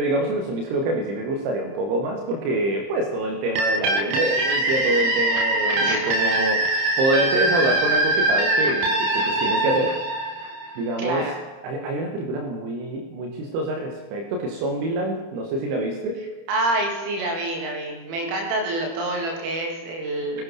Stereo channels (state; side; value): late; left; 30 ms